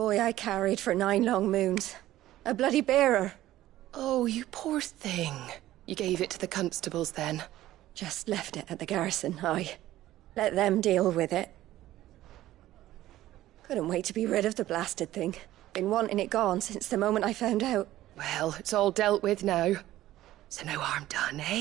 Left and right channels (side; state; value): left; quieter; 14.7 dB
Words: I carried for 9 long moons. A bloody bearer. Oh, you poor thing. You gave it to the constables then? Just left it at the garrison, aye. Let them deal with it. Couldn't wait to be rid of the blasted thing. Been wanting it gone since the moment I found out. Well, it's all dealt with now. So no harm done,